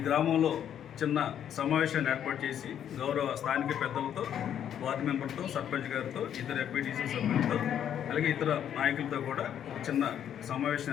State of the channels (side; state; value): right; quieter; 9.6 dB